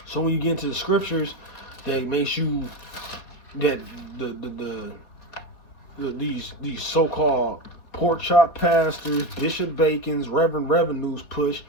So when you get into the scriptures, that makes you that these so-called pork chop pastors, Bishop Bacon's, Reverend Revenues push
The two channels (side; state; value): right; late; 4.1 ms